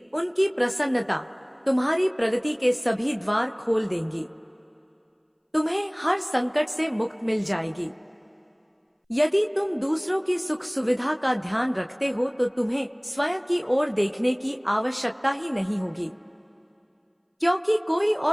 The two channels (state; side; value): identical; both; correlation 1.00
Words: उनकी प्रसन्नता तुम्हारी प्रगति के सभी द्वार खोल देंगी। तुम्हें हर संकट से मुक्त मिल जाएगी। यदि तुम दूसरों की सुख सुविधा का ध्यान रखते हो तो तुम्हें स्वयं की ओर देखने की आवश्यकता ही नहीं होगी, क्योंकि कोई